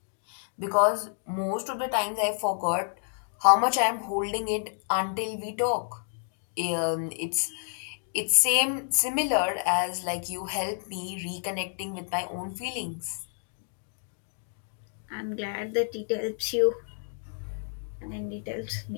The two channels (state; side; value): silent; right; 58 dB below the other